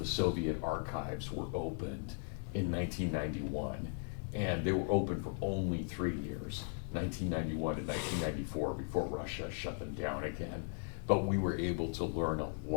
Soviet archives were opened in 1991. And they were open for only 3 years, 1991 and 1994, before Russia shut them down again. But we were able to learn a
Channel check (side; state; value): right; silent; 53 dB below the other